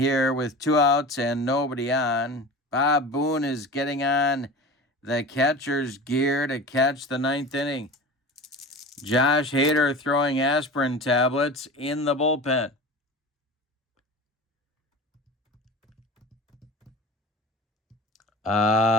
with 2 outs and nobody on. Bob Boone is getting on the catcher's gear to catch the 9th inning. Josh Hader throwing aspirin tablets in the bullpen.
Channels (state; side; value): normal; both; correlation 0.34